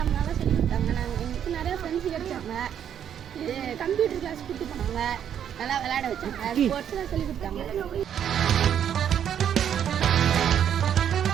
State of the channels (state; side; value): quieter; left; 9.2 dB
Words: நல்லா சொல்லி கொடுத்தாங்க. எங்களுக்கு நிறைய ஃப்ரெண்ட்ஸ் கிடைச்சாங்க. கம்ப்யூட்டர் கிளாஸ் கூப்பிட்டு போனாங்க, நல்லா விளையாட வச்சாங்க, ஸ்போர்ட்ஸ்லாம் சொல்லி கொடுத்தாங்க.